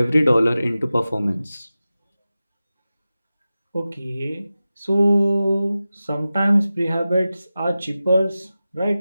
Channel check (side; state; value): both; inverted; correlation -0.95